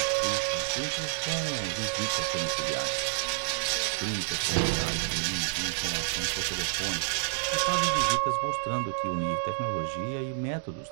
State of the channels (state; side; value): silent; left; digital silence